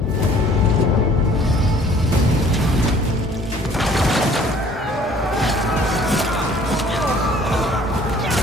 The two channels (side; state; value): both; normal; correlation 0.54